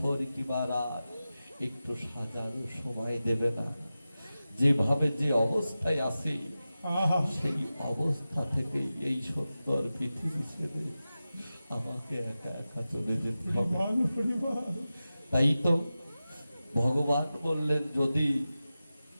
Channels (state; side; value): inverted; both; correlation -0.94